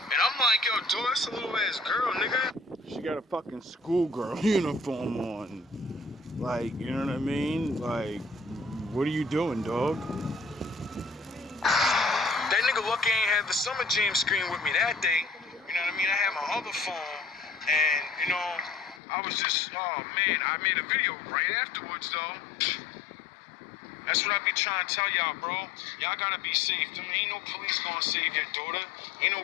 And I'm like, yo, dude, that's a little ass girl, nigga. She got a fucking schoolgirl uniform on. Like, you know what I mean? Like, what are you doing, dog? That nigga lucky ain't had the Summer Jam screen with me that day. You know what I mean? I had my other phone, and, you know, I was just, oh, man, I made a video right afterwards, though. That's what I be trying to tell y'all, bro. Y'all gotta be safe. Ain't no police gonna save your daughter. Ain't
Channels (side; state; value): right; drops out; at 19.0 s